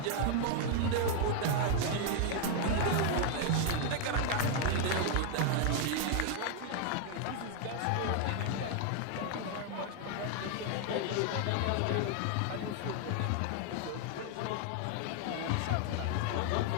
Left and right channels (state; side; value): different; both; correlation 0.00